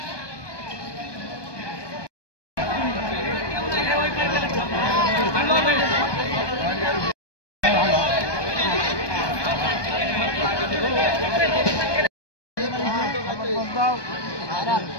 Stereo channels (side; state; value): right; late; 1.2 ms